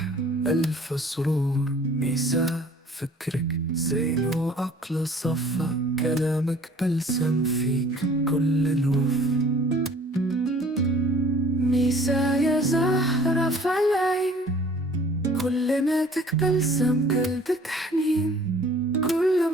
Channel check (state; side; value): normal; both; correlation 0.52